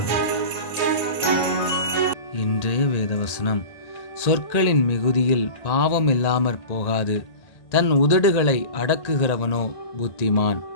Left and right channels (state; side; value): late; right; 1.8 ms